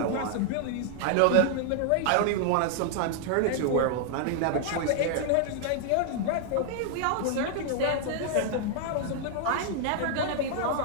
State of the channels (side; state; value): both; different; correlation 0.00